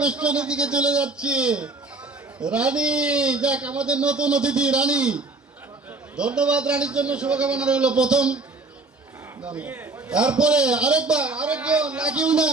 দিকে চলে যাচ্ছি। রানী, যাক আমাদের নতুন অতিথি রানী। ধন্যবাদ রানীর জন্য, শুভকামনা রইল। প্রথম, তারপরে আরেকবার, আরেকজন লাগিও না।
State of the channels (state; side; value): quieter; left; 3.5 dB